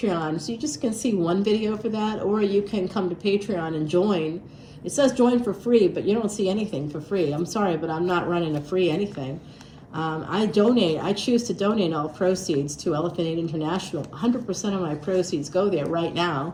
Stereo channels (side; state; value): both; identical; correlation 1.00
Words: so you just can see one video for that, or you can come to Patreon and join. It says join for free, but you don't see anything for free. I'm sorry, but I'm not running a free anything. I choose to donate all proceeds to Elephant Aid International. 100% of my proceeds go there right now.